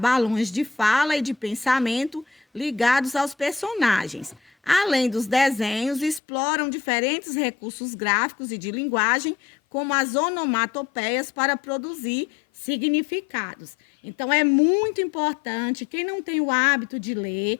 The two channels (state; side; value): drops out; right; at 6.2 s